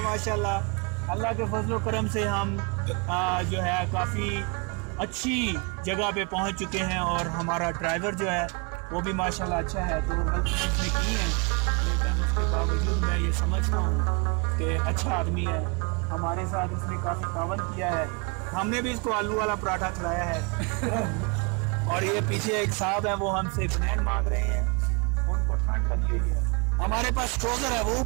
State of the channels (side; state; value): left; quieter; 32.0 dB